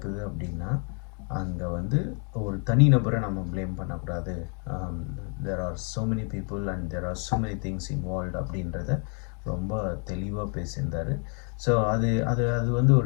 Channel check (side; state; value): right; quieter; 39.9 dB